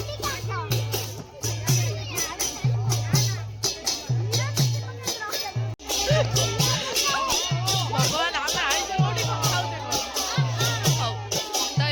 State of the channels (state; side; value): identical; both; correlation 1.00